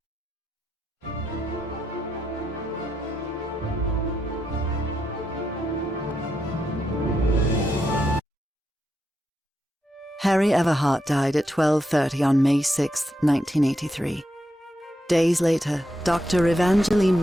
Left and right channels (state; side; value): normal; both; correlation 0.83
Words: Harry Everhart died at 12:30 on May 6, 1983. Days later, Dr. Evangeline